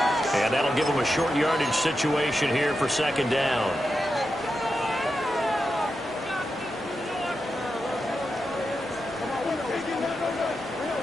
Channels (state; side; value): normal; both; correlation 0.88